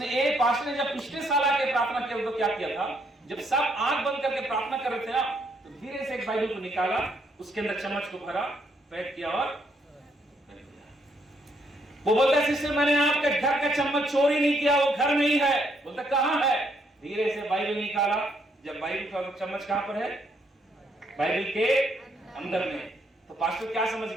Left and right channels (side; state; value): both; normal; correlation 0.72